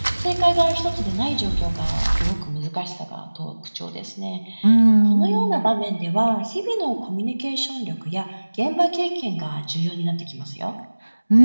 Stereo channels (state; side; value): inverted; both; correlation -1.00